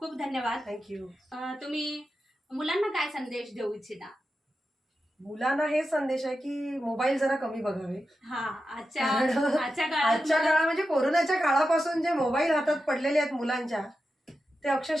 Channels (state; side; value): normal; both; correlation 0.90